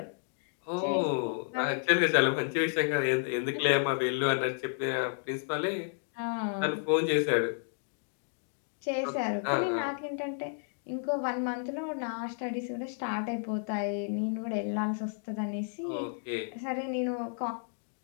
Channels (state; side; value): silent; right; digital silence